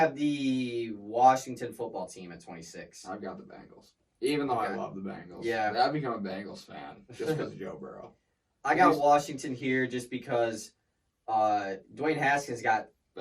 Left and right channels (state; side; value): identical; both; correlation 1.00